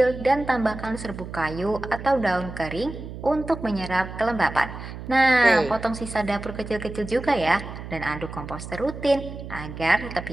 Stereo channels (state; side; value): noise; right; hum, 11 dB below the sound